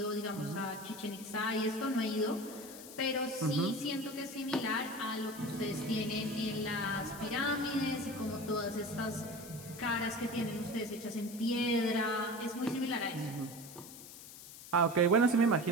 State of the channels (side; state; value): left; noise; hiss, 15 dB below the sound